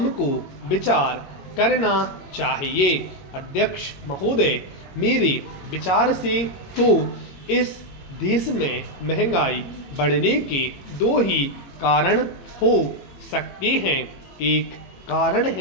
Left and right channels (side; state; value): right; late; 22 ms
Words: विचार करना चाहिए। अध्यक्ष महोदय, मेरे विचार से तो इस देश में महंगाई बढ़ने के 2 ही कारण हो सकते हैं। एक कारण